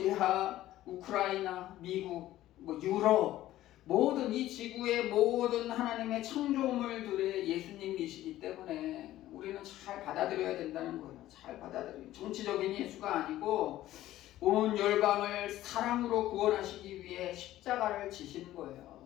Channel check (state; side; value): quieter; right; 14.4 dB